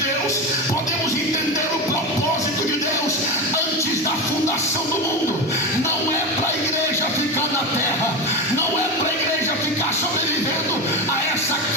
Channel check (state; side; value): normal; both; correlation 0.18